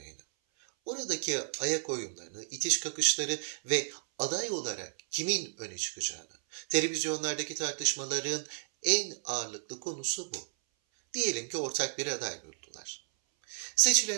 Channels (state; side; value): silent; left; 56 dB below the other